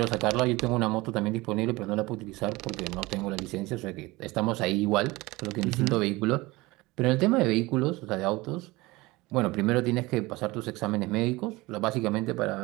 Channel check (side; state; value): left; quieter; 21.4 dB